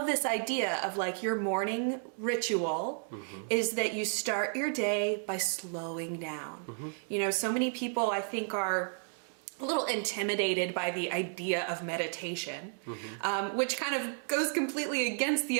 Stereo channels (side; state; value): left; silent; 56 dB below the other